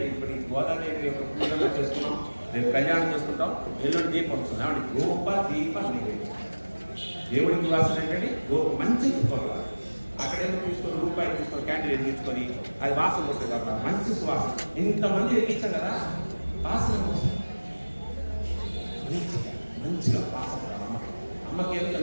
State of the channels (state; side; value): inverted; both; correlation -1.00